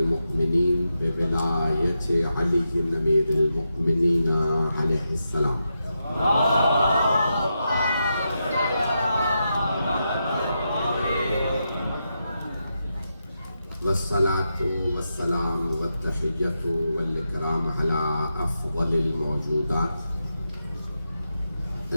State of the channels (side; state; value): both; inverted; correlation -0.86